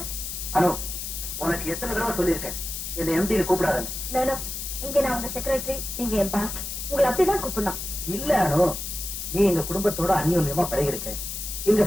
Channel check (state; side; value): noise; left; hiss, 6 dB below the sound